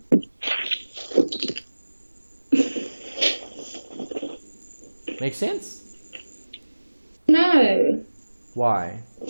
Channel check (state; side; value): inverted; both; correlation -1.00